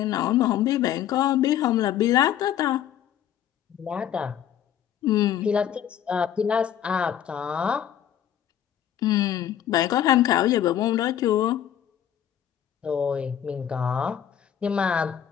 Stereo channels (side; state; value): right; quieter; 10.1 dB